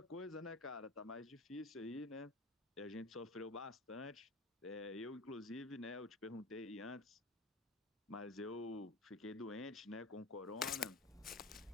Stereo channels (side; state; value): right; quieter; 3.1 dB